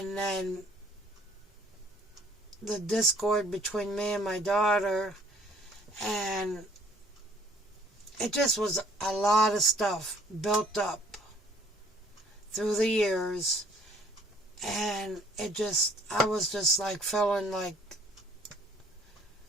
then the discord between me and my daughter, and it just was a lot of stuff built up through the years, and I was just like feeling like,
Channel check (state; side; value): normal; both; correlation 0.59